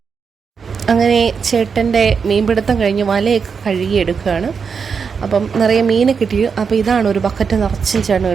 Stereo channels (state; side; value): quieter; left; 5.9 dB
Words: അങ്ങനെ ചേട്ടൻ്റെ മീൻപിടുത്തം കഴിഞ്ഞ് വലയൊക്കെ കഴുകിയെടുക്കുകയാണ്. അപ്പം നിറയെ മീൻ കിട്ടി. അപ്പോൾ ഇതാണ് ഒരു ബക്കറ്റ് നിറച്ചും ചേട്ടൻ